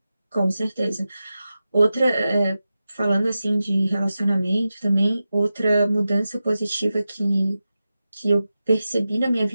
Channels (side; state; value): both; inverted; correlation -0.93